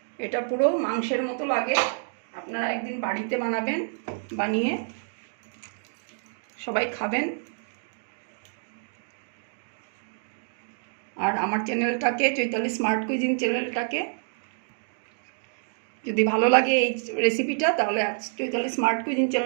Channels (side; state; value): left; silent; digital silence